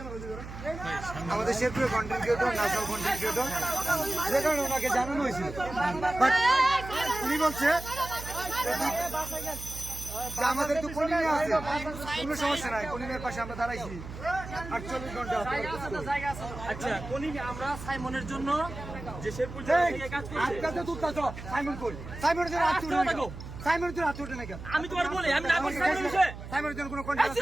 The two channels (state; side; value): noise; right; hum, 11 dB below the sound